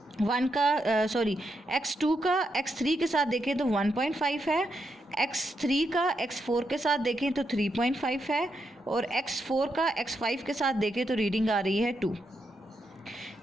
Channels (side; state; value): both; normal; correlation 0.82